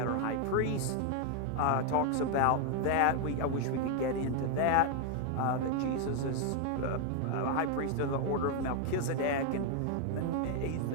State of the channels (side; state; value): both; different; correlation 0.00